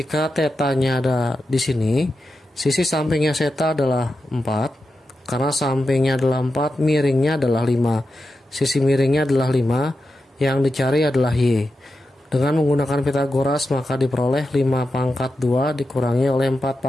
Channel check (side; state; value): both; normal; correlation 0.89